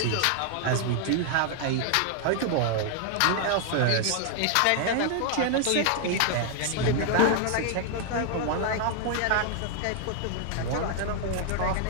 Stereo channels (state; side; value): different; both; correlation 0.00